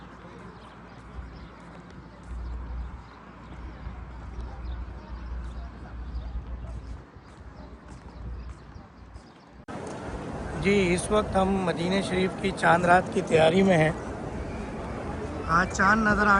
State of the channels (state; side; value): identical; both; correlation 1.00